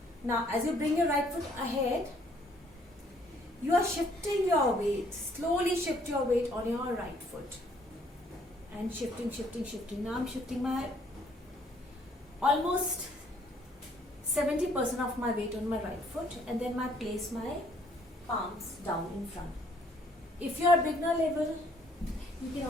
Now as you bring your right foot ahead, you are shifting your weight. Slowly shift your weight on your right foot. And shifting. Now I'm shifting my almost 70% of my weight on my right foot, and then I place my palms down in front. If you are beginner level, you can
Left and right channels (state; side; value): normal; both; correlation 0.64